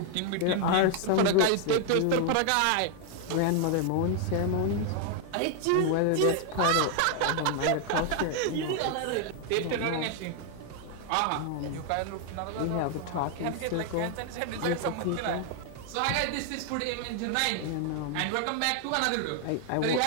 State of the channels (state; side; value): different; both; correlation 0.00